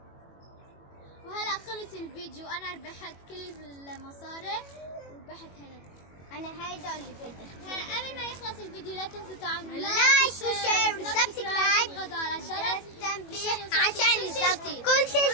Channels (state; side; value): late; right; 21 ms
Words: وهلا خلص الفيديو. انا ربحت كل المصاري وربحت هنا. أنا هيدا اللي بدي. هلا قبل ما يخلص الفيديو لا تنسوا تعملوا لايك وشير وسبسكرايب وتضغطوا على الجرس التنبيه عشان كل شيء